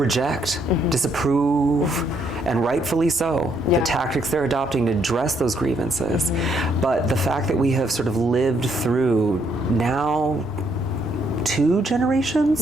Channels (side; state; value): right; noise; rumble, 22 dB below the sound